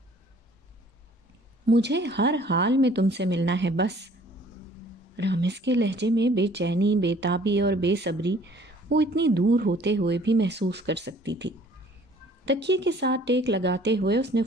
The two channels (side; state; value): both; normal; correlation 0.55